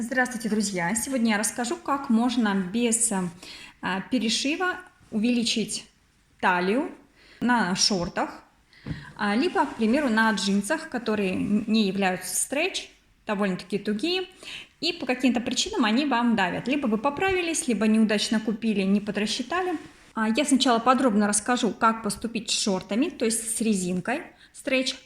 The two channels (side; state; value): both; identical; correlation 1.00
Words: Здравствуйте, друзья! Сегодня я расскажу, как можно без перешива увеличить талию на шортах, либо, к примеру, на джинсах, которые не являются стретч, довольно-таки тугие, и по каким-то причинам они вам давят. Либо вы поправились, либо неудачно купили, не подрасчитали. Я сначала подробно расскажу, как поступить с шортами, то есть с резинкой стретч,